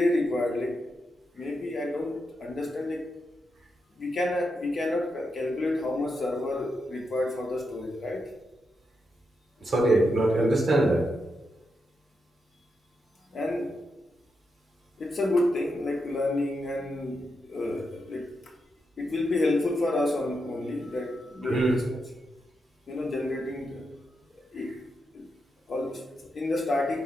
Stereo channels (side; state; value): both; normal; correlation 0.85